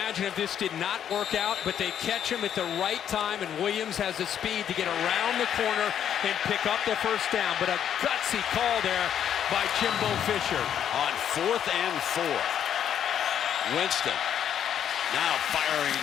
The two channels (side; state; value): right; quieter; 9.4 dB